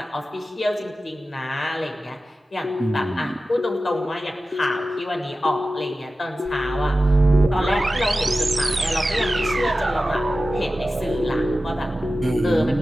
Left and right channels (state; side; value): normal; both; correlation 0.94